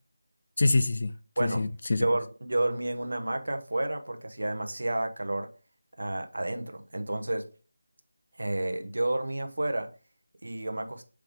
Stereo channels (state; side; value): inverted; both; correlation -0.97